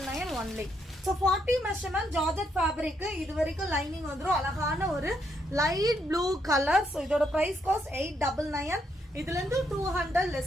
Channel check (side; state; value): both; normal; correlation 0.76